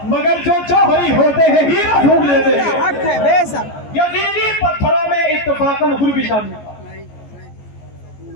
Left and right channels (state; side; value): late; right; 14 ms